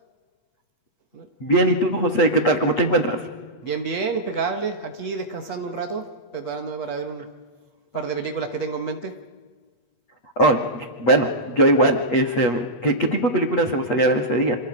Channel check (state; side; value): late; right; 8.3 ms